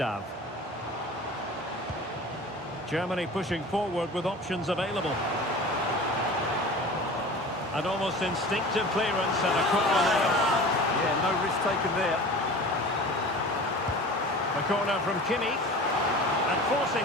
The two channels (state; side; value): normal; both; correlation 0.38